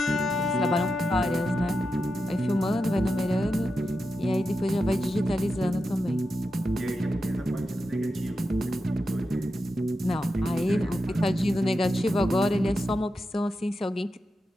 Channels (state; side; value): normal; both; correlation 0.89